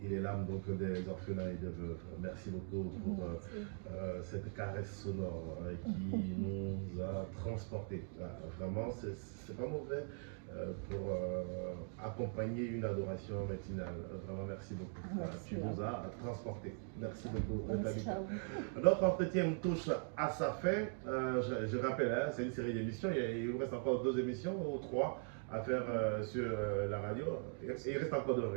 les larmes donc, des orphelins et des veuves. Merci beaucoup pour cette caresse sonore qui nous a transportés. Vraiment, c'est pas mauvais pour accompagner une adoration matinale. Vraiment, merci beaucoup. Merci. Tu nous as transportés. Merci beaucoup. Merci à vous. Notre entretien touche à sa fin. Je rappelle, hein, c'est une série d'émissions. Il vous reste encore 2 émissions ou 3 à faire sur la radio. Il reste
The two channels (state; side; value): silent; left; 50 dB below the other